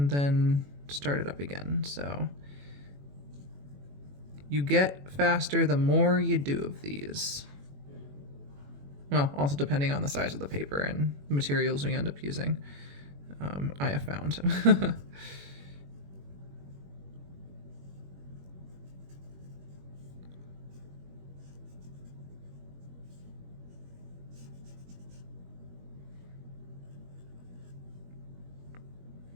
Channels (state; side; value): late; left; 21 ms